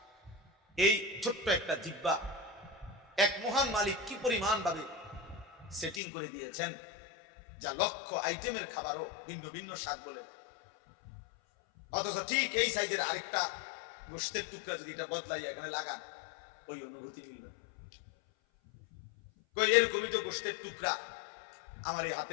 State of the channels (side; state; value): right; drops out; at 6.0 s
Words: এই ছোট্ট একটা জিহ্বা এক মহান মালিক কি পরিমাণ ভাবে সেটিং করে দিয়েছেন, যা লক্ষ আইটেমের খাবারও ভিন্ন ভিন্ন স্বাদ বলে। অথচ ঠিক এই সাইজের আরেকটা গোশতের টুকরা যদি এটা বদলাইয়া এখানে লাগান, ওই অনুভূতি মিলবে। কই এরকমই তো গোশতের টুকরা, আমার এই